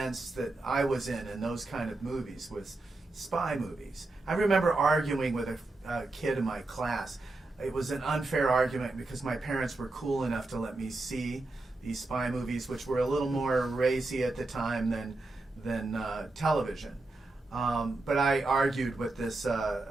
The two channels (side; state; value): left; quieter; 3.1 dB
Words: that I was in those kind of movies was spy movies. I remember arguing with a kid in my class. It was an unfair argument because my parents were cool enough to let me see these spy movies, which were a little more racy at the time than television. But I argued with this